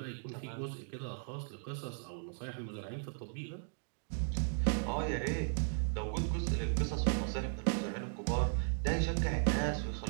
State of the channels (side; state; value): left; silent; digital silence